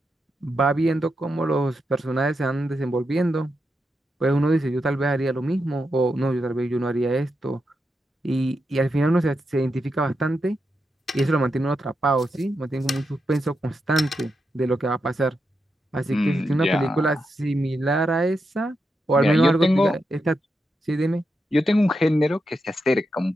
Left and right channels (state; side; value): normal; both; correlation 0.86